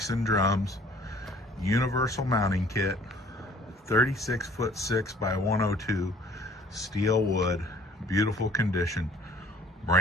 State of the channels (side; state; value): both; normal; correlation 0.54